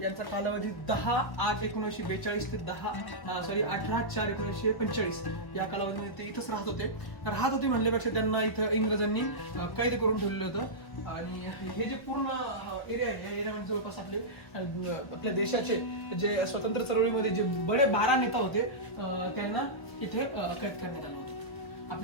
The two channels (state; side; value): late; right; 1.2 ms